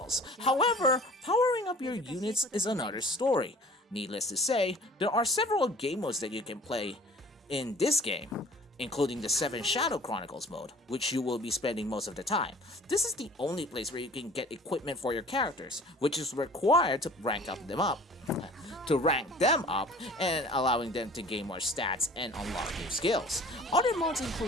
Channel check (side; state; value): both; normal; correlation 0.47